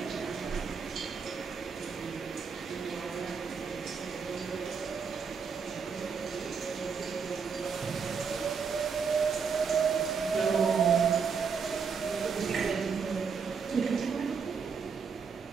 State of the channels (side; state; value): left; quieter; 5.9 dB